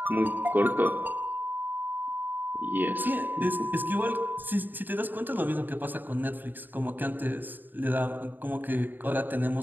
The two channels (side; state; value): left; late; 0.090 ms